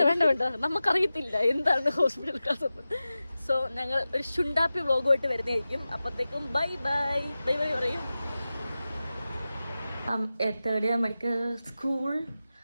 നമുക്കറിയത്തില്ല എന്താണ് ഹോസ്പിറ്റൽ ക്ലാസ് എന്ന്. സോ ഞങ്ങൾ ഒരു ചുണ്ടാപ്പി വ്ലോഗുമായിട്ട് വരുന്നതായിരിക്കും. അപ്പത്തേക്കും ബൈ ബൈ പറയും. 3rd year medical school.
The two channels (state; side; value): inverted; both; correlation -0.95